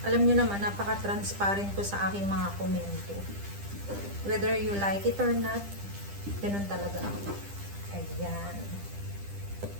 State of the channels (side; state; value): left; late; 10 ms